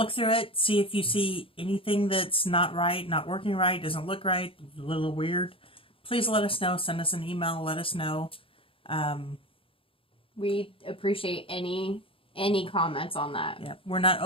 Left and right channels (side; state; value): right; late; 0.26 ms